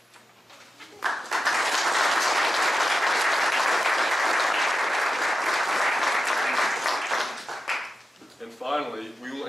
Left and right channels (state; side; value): normal; both; correlation 0.90